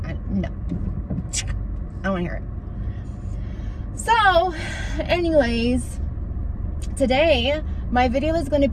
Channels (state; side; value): identical; both; correlation 1.00